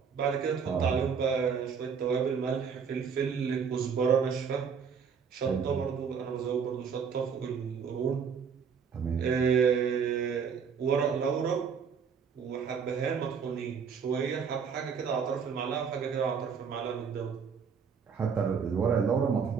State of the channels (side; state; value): left; quieter; 6.4 dB